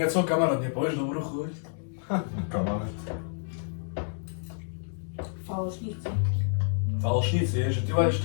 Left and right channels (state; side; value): silent; right; digital silence